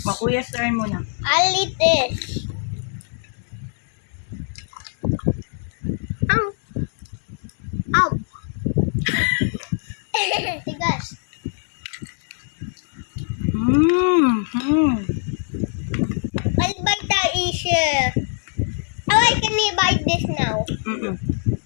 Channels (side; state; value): right; silent; 64 dB below the other